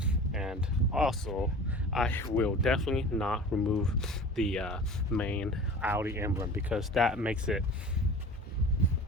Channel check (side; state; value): both; normal; correlation 0.39